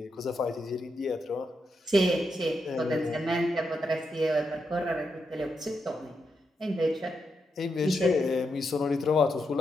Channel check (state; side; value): normal; both; correlation 0.83